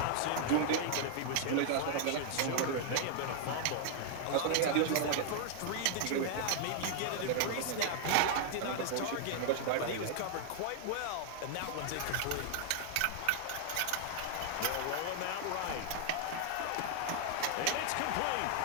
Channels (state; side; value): different; both; correlation 0.00